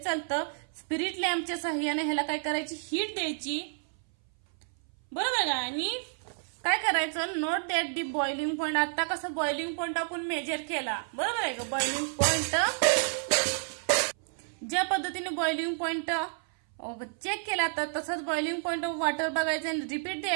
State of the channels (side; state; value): left; silent; 58 dB below the other